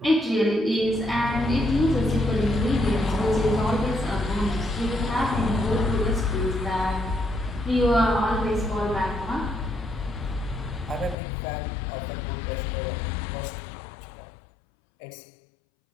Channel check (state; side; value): drops out; right; at 11.2 s